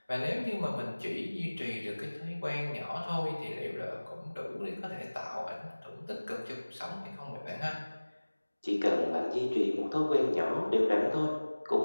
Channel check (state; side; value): inverted; both; correlation -1.00